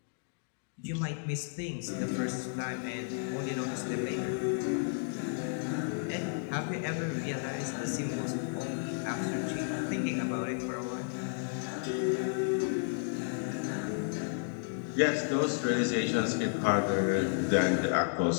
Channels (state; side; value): silent; right; digital silence